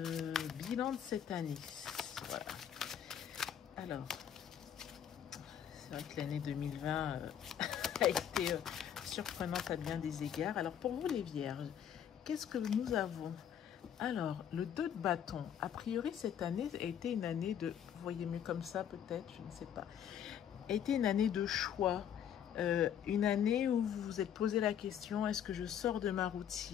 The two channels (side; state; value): right; quieter; 9.2 dB